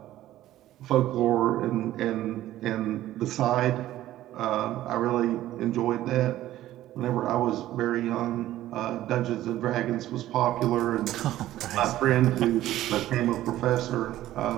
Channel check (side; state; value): left; quieter; 14.2 dB